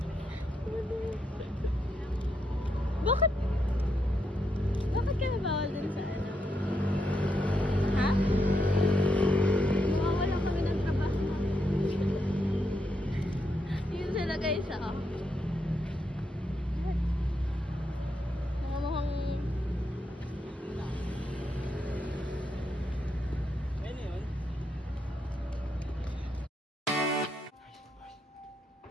Bakit? Bakit ka nabawal dun sa ano? Ha? Mawawala kami ng trabaho. Yun sila guys, ah. Mga mukhang... Ayun yun.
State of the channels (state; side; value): normal; both; correlation 0.80